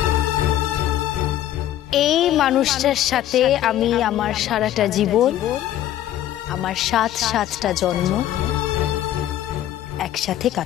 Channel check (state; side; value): quieter; right; 12.4 dB